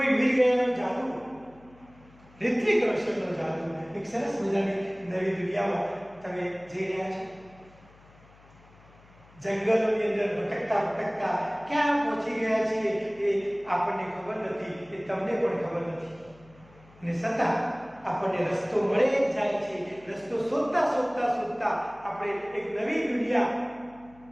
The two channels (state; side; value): noise; left; hum, 26 dB below the sound